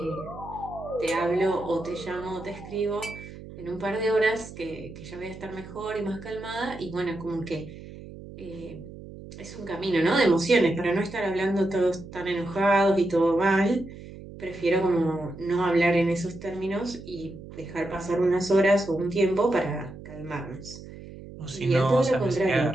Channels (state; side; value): noise; right; hum, 15 dB below the sound